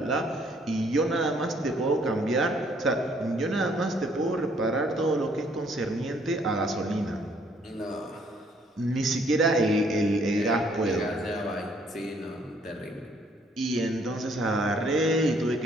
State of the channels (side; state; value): both; normal; correlation 0.64